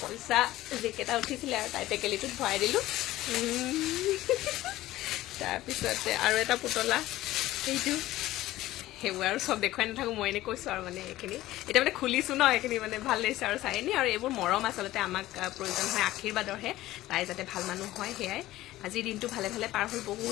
পইচা যিকেইটা উঠিছিলে আৰু তাই টেকেলিটোত ভৰাই দিলোঁ তাৰপিছতে আৰু এটা পুতলা সেইটো সেইবোৰ আৰু চব দেখুৱাই নাথাকোঁ মই এনেই কৈছোঁ আৰু মানে এইখিনি এতিয়া মানে খুলিছোঁ ন এইখিনি মানে ভাল লাগিছে আৰু চাই নি আৰু এইবোৰ মৰম আচলতে আমাক প্ৰয়োজন হয় আশীৰ্বাদৰহে তাই যাতে ভাল মানুহ হয় সেয়াই আজিৰ দিনটো ভালে ভালে পাৰ হৈ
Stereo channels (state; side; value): quieter; right; 16.0 dB